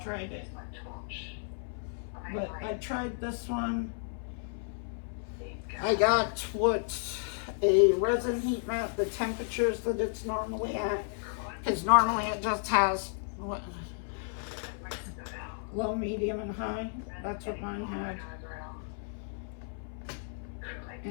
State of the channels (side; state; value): right; silent; 56 dB below the other